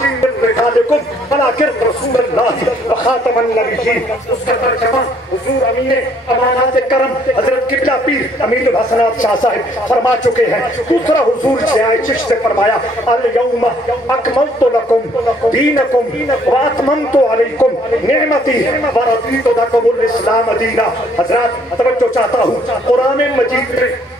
من رجالکم ولکن رسول اللہ وخاتم النبیین۔ اس کا ترجمہ حضور امین امانات کرم حضرت قبلہ پیر امین الحسنات شاہ صاحب فرما چکے ہیں۔ دوسرا حضور ضیاء چشت نے فرمایا، الیوم اکملت لکم دینکم واتممت علیکم نعمتی ورضیت لکم الاسلام دینا۔ حضرات توجہ چاہتا ہوں، قرآن مجید میں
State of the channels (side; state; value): both; normal; correlation 0.64